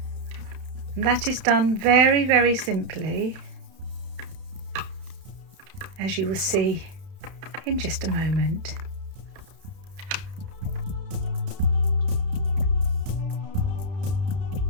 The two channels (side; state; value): left; late; 31 ms